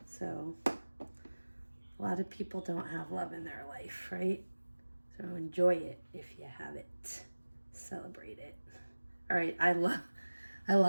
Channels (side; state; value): both; inverted; correlation -1.00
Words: So a lot of people don't have love in their life, right? So enjoy it if you have it. Celebrate it. All right, I